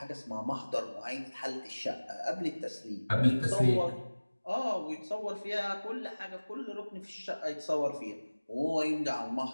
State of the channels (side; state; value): both; inverted; correlation -1.00